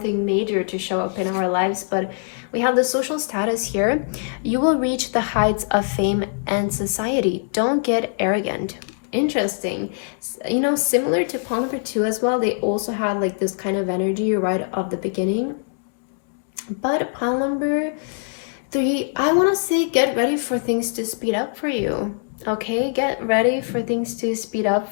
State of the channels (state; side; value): silent; right; digital silence